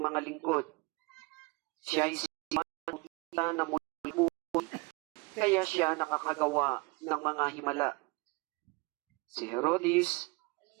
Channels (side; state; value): left; quieter; 25.9 dB